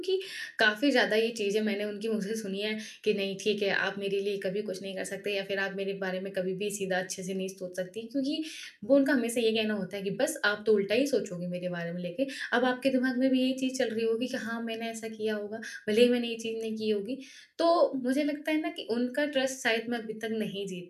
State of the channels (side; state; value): both; identical; correlation 1.00